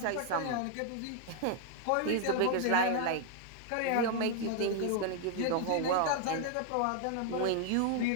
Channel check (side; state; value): both; different; correlation 0.00